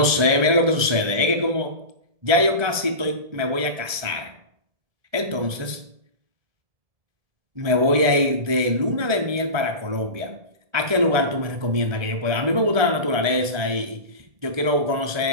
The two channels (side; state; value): left; late; 1.4 ms